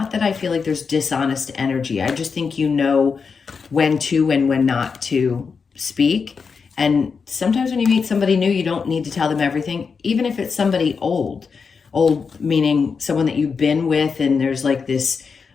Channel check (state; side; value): quieter; right; 5.5 dB